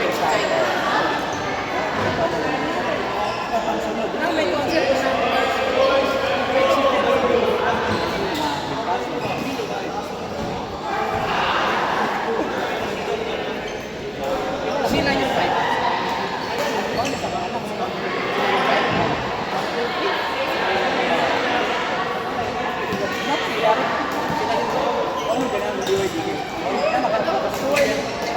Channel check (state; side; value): identical; both; correlation 1.00